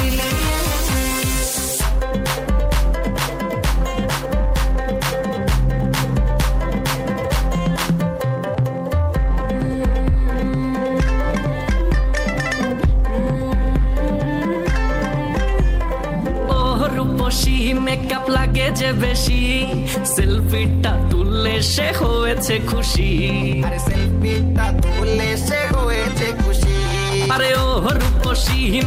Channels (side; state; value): both; identical; correlation 1.00